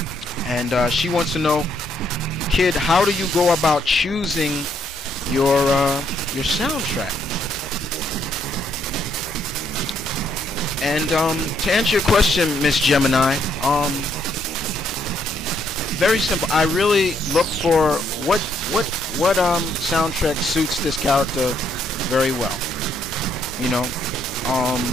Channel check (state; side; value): normal; both; correlation 0.72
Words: And she wants to know, kid, how do you go about choosing your soundtrack? And to answer your question, Miss Gemini, very simple. I really look for what soundtrack suits this character very well.